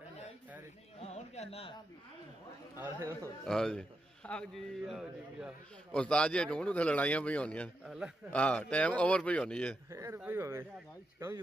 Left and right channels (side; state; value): both; normal; correlation 0.85